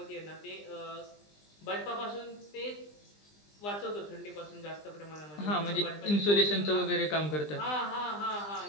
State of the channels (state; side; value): late; right; 20 ms